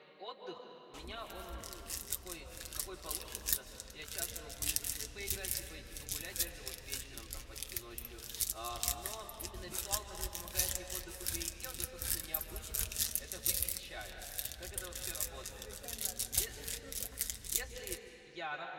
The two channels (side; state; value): both; identical; correlation 1.00